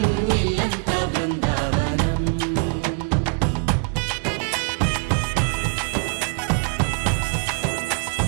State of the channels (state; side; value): quieter; left; 39.0 dB